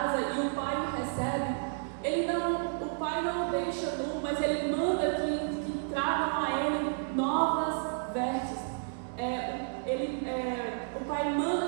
e o pai o recebe, o pai não o deixa nu, mas ele manda que tragam a ele novas vestes. O pai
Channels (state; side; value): silent; left; digital silence